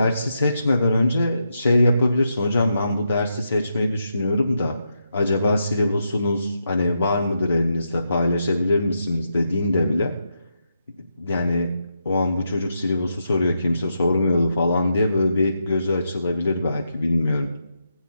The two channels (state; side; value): inverted; both; correlation -0.83